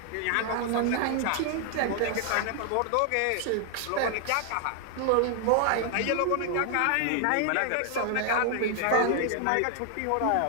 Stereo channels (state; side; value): different; both; correlation 0.00